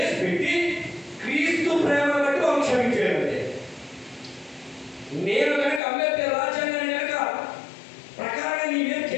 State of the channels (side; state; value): right; drops out; at 5.8 s